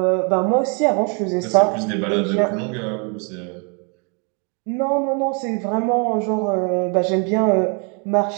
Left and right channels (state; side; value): quieter; left; 36.0 dB